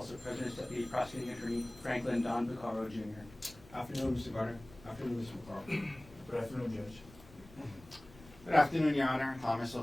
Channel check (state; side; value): noise; left; rumble, 22 dB below the sound